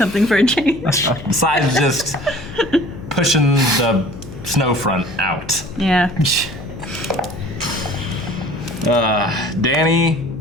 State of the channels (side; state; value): left; noise; hum, 15 dB below the sound